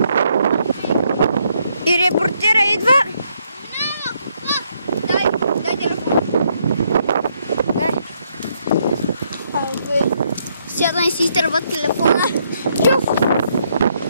И репортера идва. Дай телефон. Сядна и си изтърва телефона. Чув!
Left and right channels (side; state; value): both; inverted; correlation -0.73